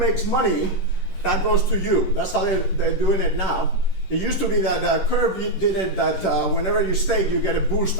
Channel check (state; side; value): late; right; 10 ms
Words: money, that goes to you. That's how they're doing it now. It used to be that Curve did it that whenever you stake, you get a boost